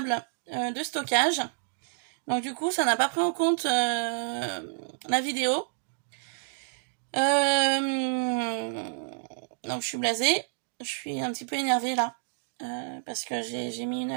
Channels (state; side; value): silent; left; digital silence